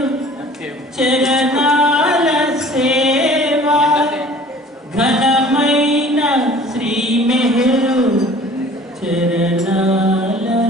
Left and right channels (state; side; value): normal; both; correlation 0.48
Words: చరణాల సేవ ఘనమైన శ్రీ మెహరు చరణాల